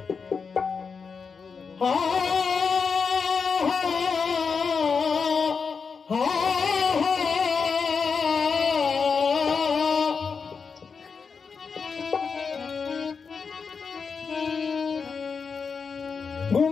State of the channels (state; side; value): quieter; right; 5.5 dB